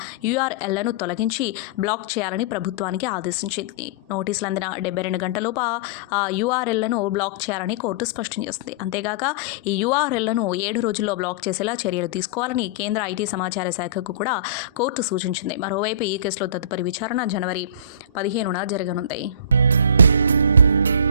URLలను తొలగించి బ్లాక్ చేయాలని ప్రభుత్వానికి ఆదేశించింది. నోటీసులు అందిన 72 గంటలలోపు ఆ URLలను బ్లాక్ చేయాలని కోర్టు స్పష్టం చేసింది. అంతేగాక ఈ URLలను 7 రోజుల్లో బ్లాక్ చేసేలా చర్యలు తీసుకోవాలని కేంద్ర ఐటీ సమాచార శాఖకు కూడా కోర్టు సూచించింది. మరోవైపు ఈ కేసులో తదుపరి విచారణ జనవరి 15న జరగనుంది.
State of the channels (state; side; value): inverted; both; correlation -0.36